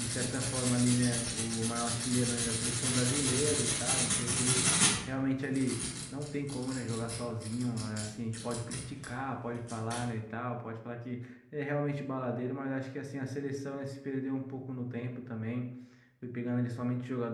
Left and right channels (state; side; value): identical; both; correlation 1.00